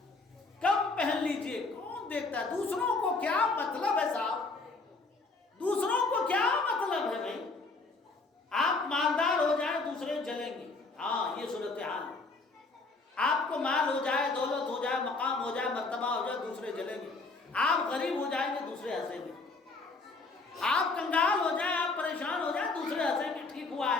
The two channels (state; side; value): quieter; right; 3.7 dB